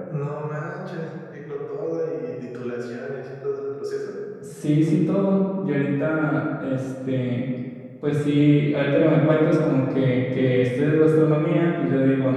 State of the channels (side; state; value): both; identical; correlation 1.00